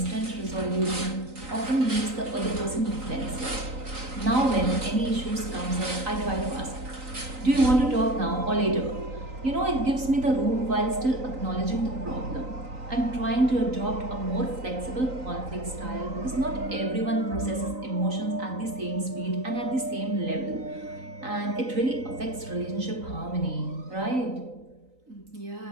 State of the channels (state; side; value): late; left; 3.9 ms